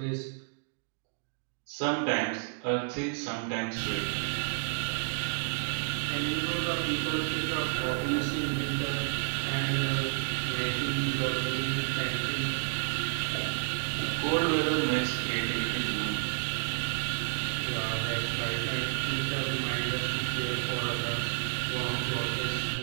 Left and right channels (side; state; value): left; silent; digital silence